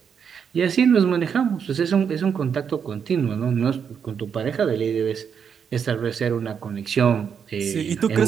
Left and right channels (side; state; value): left; quieter; 7.2 dB